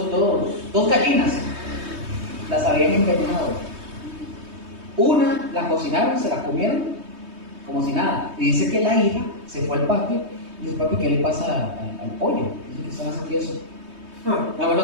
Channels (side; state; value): left; late; 3.2 ms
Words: gallinas, las habían envenenado. Una la cocinaron, se la comieron como si nada. Y dice que la hija se fue al patio y dice: papi, ¿qué le pasa al pollo? Dice que estaba así eso. Nada más